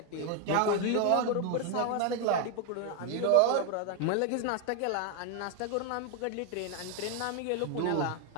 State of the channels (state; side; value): different; both; correlation 0.01